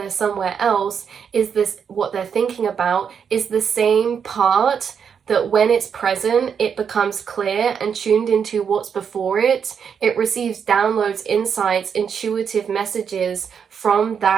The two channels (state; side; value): quieter; left; 7.1 dB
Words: somewhere else is this, what they're thinking about is the same part that when it's present, it becomes clear and tuned into what's before it. It receives downloads, insights, intuitive messages from